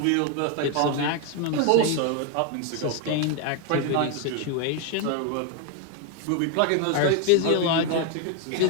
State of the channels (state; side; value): different; both; correlation 0.01